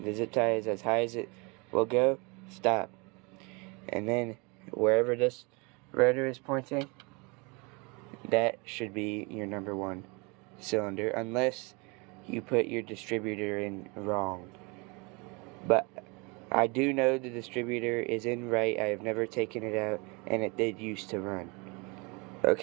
zip tie is as high as it will go, stop. And then wherever this rotor is pointing, that should be your number 1 cylinder, unless you put your distributor in wrong. But I do know the distributor is in right. I have never taken it out, and it did used to run.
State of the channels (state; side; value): quieter; left; 29.1 dB